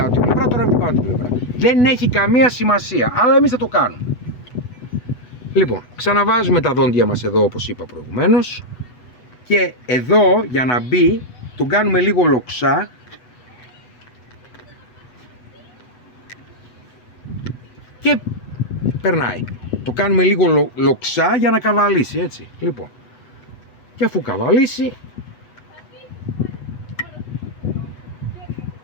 την πλευρά, τώρα είναι από την πάνω την πλευρά. Δεν έχει καμία σημασία, αλλά εμείς θα το κάνουμε. Λοιπόν, ξαναβάζουμε τα δόντια μας εδώ όπως είπα προηγουμένως. Και εδώ για να μπει, τον κάνουμε λίγο λοξά. Και περνάει. Το κάνουμε λίγο λοξά για να καβαλήσει, έτσι. Λοιπόν, και αφού καβαλήσει,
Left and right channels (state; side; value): late; right; 8.1 ms